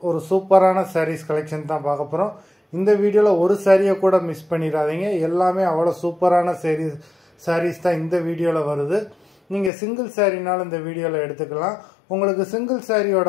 ஒரு சூப்பரான சாரீஸ் கலெக்ஷன் தான் பார்க்க போகிறோம். இந்த வீடியோவில் ஒரு சாரியை கூட மிஸ் பண்ணிடாதீங்க. எல்லாமே அவ்வளோ சூப்பரான சாரீஸ் தான் இந்த வீடியோவில் வருது. நீங்கள் சிங்கிள் சாரினாலும் இந்த வீடியோவில் எடுத்துக்கலாம். உங்களுக்கு சிங்கிள்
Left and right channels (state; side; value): drops out; right; at 9.7 s